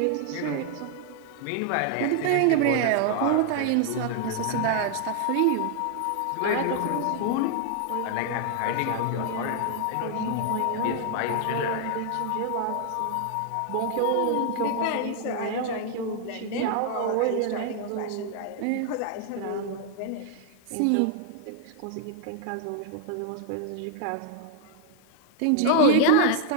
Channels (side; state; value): both; different; correlation 0.00